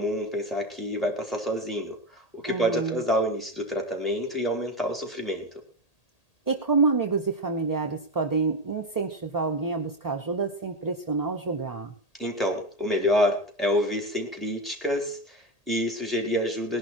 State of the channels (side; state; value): right; late; 1.8 ms